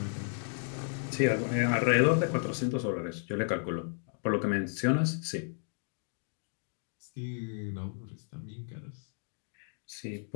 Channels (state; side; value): silent; right; 55 dB below the other